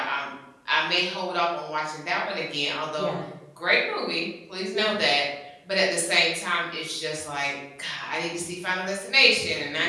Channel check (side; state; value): both; identical; correlation 1.00